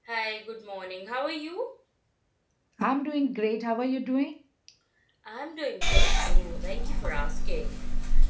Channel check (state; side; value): identical; both; correlation 1.00